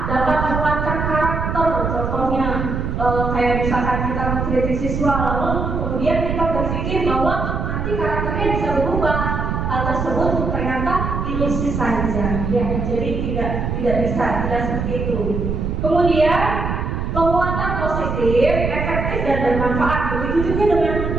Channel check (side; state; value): right; noise; rumble, 2 dB below the sound